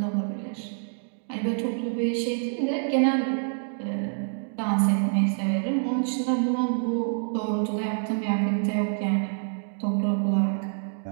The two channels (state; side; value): silent; left; digital silence